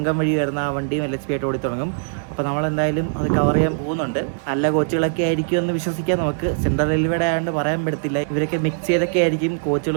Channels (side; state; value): left; silent; digital silence